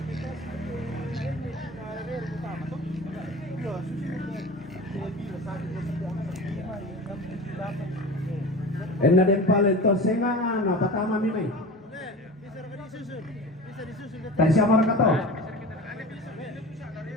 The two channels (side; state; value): both; normal; correlation 0.34